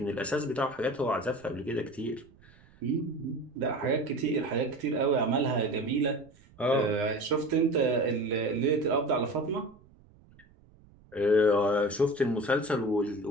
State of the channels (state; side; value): noise; right; rumble, 27 dB below the sound